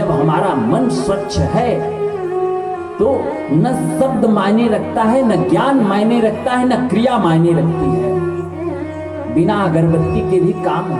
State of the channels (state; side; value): identical; both; correlation 1.00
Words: हमारा मन स्वच्छ है तो न शब्द मायने रखता है, न ज्ञान मायने रखता है, न क्रिया मायने रखती है। बिना अगरबत्ती के भी काम